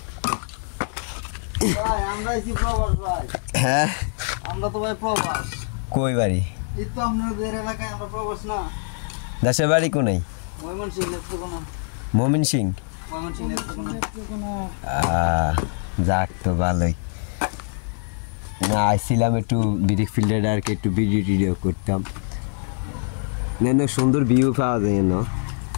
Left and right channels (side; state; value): right; silent; 61 dB below the other